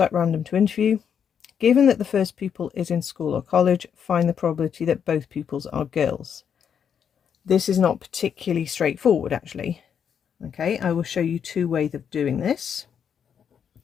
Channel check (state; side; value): quieter; right; 7.8 dB